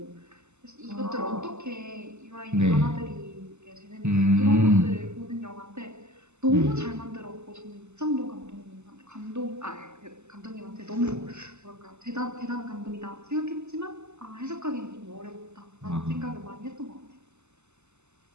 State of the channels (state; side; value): late; left; 0.83 ms